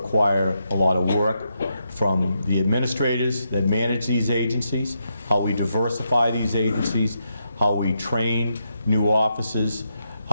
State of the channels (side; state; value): both; inverted; correlation -0.82